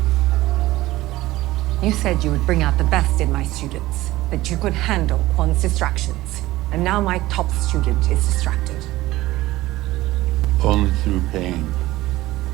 You said you would bring out the best in my students, that you could handle Quan's distractions. And now my top student is distracted. Only through pain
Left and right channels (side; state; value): left; quieter; 17.3 dB